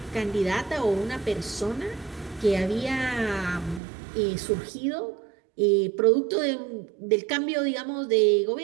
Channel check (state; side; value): drops out; left; at 3.8 s